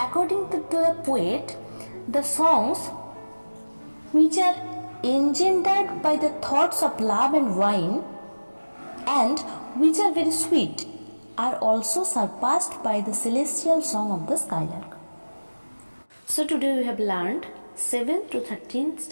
to the poet, the songs which are engendered by the thoughts of love and wine and which are very sweet are also surpassed by the celestial song of the skylark. So today we have learned 7th to 13th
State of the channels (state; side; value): inverted; both; correlation -1.00